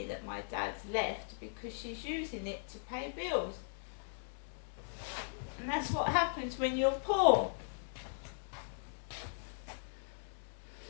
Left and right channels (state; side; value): silent; right; digital silence